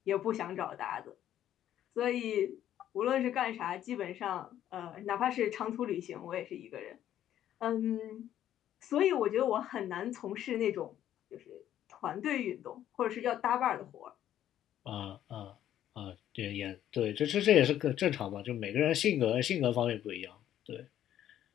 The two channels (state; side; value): quieter; right; 11.5 dB